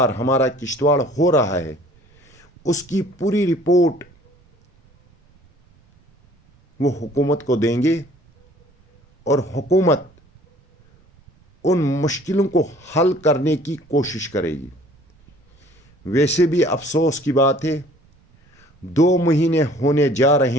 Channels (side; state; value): both; normal; correlation 0.53